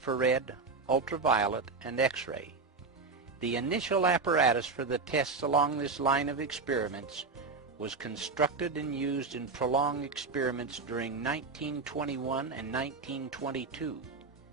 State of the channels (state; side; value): quieter; left; 4.3 dB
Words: ultraviolet, and X-ray. The initial apparatus for the tests along this line of experiments was constructed and used in prolonged experiments during 1921 and 1922.